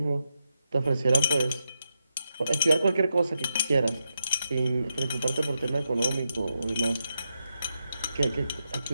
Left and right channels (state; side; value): inverted; both; correlation -0.86